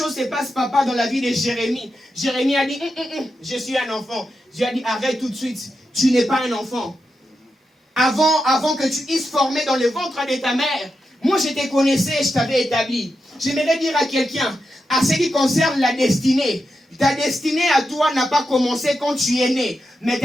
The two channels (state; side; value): normal; both; correlation 0.88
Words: se passe, papa, dans la vie de Jérémie. Jérémie a dit, je suis un enfant. Dieu a dit, arrête tout de suite, tu n'es pas un enfant. Avant que tu puisses former dans le ventre de ta mère, moi je te connaissais, je t'avais établi. J'aimerais dire à quelqu'un, à ce qui concerne la destinée, ta destinée à toi n'a pas commencé quand tu es né, mais